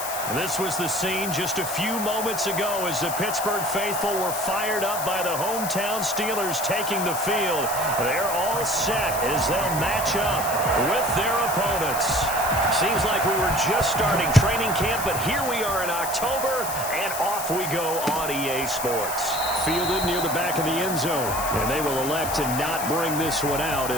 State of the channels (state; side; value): noise; left; hiss, 6 dB below the sound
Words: This was the scene just a few moments ago as the Pittsburgh faithful were fired up by the hometown Steelers taking the field. They're all set as they'll match up with their opponents. Seems like we were just starting training camp, but here we are in October, and off we go on EA Sports. Fielded near the back of the end zone, and they will elect to not bring this one out